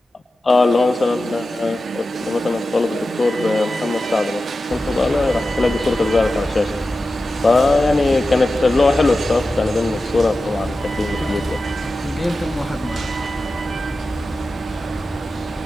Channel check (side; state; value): both; normal; correlation 0.93